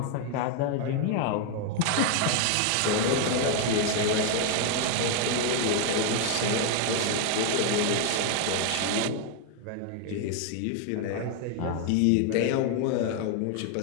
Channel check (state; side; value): different; both; correlation 0.00